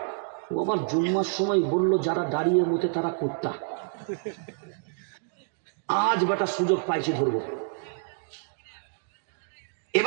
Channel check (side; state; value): left; silent; digital silence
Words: আবার জুম্মার সময় বললো যারা দাঁড়িয়ে মোতে তারা কুত্তা। আজ বেটা সুযোগ পাইছি ধরবো।